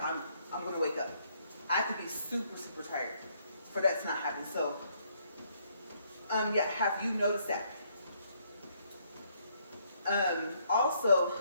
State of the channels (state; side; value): inverted; both; correlation -0.70